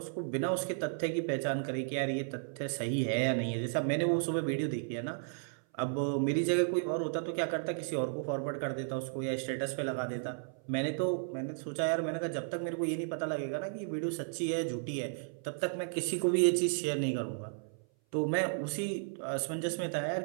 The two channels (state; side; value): silent; left; 55 dB below the other